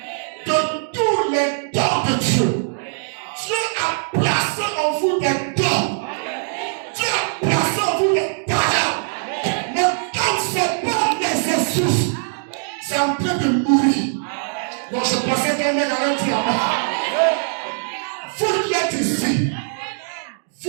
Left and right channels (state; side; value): silent; left; 65 dB below the other